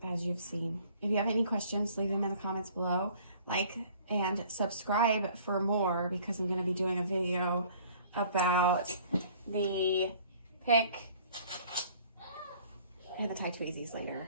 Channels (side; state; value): both; inverted; correlation -0.53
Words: as you've seen. If you have any questions, leave them in the comments below. Like and subscribe for more, because I'm going to be doing a video about the pick and the tie tweezies